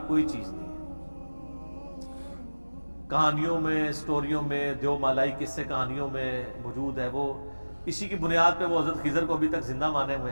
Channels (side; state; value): both; inverted; correlation -1.00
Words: کوئی چیز نہیں ہے. کہانیوں میں، سٹوریوں میں، دیو مالائی قصے کہانیوں میں موجود ہے. وہ اسی کی بنیاد پہ وہ حضرت خضر کو ابھی تک زندہ مانے